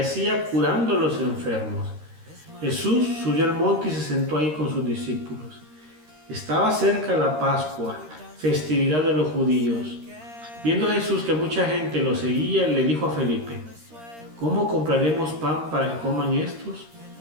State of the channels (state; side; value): late; left; 13 ms